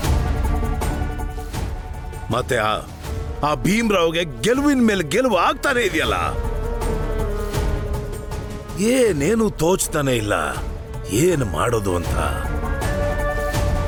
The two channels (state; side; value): identical; both; correlation 1.00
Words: ಮತ್ತೆ ಆ ಭೀಮ್ರಾವ್ಗೆ ಗೆಲುವಿನ ಮೇಲೆ ಗೆಲುವು ಆಗ್ತಾನೆ ಇದೆಯಲ್ಲ. ಏನೇನು ತೋಚ್ತಾನೆ ಇಲ್ಲ, ಏನು ಮಾಡೋದು ಅಂತ.